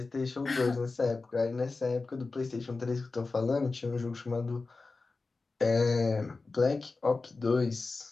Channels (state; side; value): quieter; right; 3.8 dB